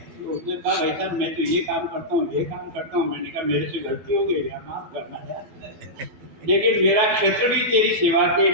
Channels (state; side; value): late; left; 12 ms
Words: तो उसने कहा भाई साहब मैं तो ये काम करता हूँ, ये काम करता हूँ। मैंने कहा मेरे से गलती हो गई, माफ करना यार, लेकिन मेरा क्षेत्र भी तेरी सेवा के